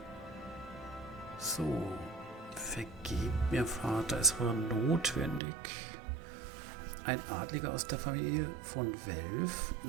So, Vergebt mir, Vater, es war notwendig. Ein Adliger aus der Familie von Welf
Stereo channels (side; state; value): left; drops out; at 5.4 s